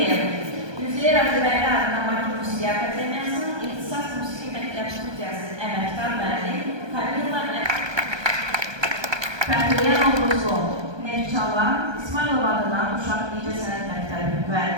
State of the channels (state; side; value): late; left; 1.2 ms